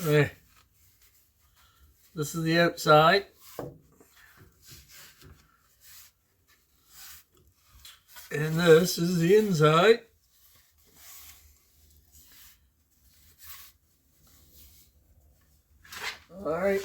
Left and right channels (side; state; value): both; identical; correlation 1.00